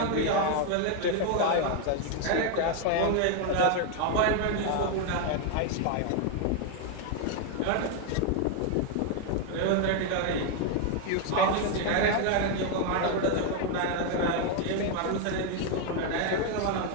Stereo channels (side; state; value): both; different; correlation 0.01